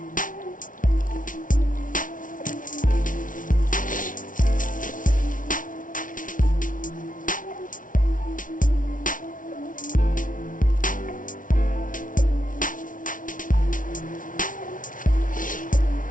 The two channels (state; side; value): late; right; 0.38 ms